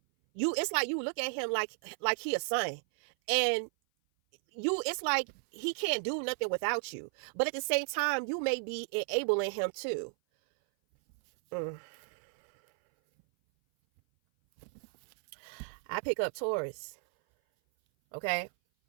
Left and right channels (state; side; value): silent; left; 55 dB below the other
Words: It's like you look at him like he a son, and it's like he can't do nothing without you. But at the same time, you may be enabling him too. I pick up Taurus. Okay.